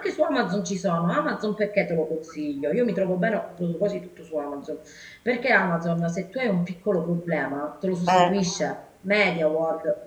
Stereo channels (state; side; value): identical; both; correlation 1.00